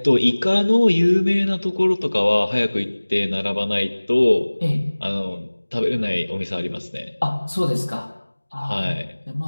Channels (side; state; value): both; inverted; correlation -1.00